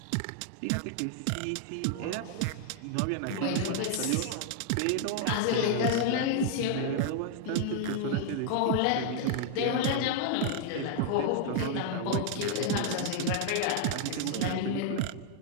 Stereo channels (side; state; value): both; different; correlation 0.00